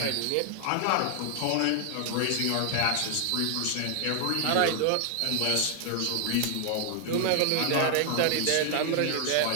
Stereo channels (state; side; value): different; both; correlation 0.00